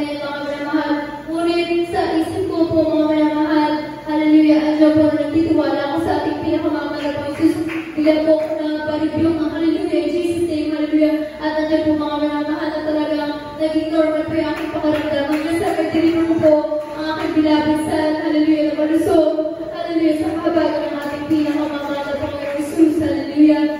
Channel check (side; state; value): both; identical; correlation 1.00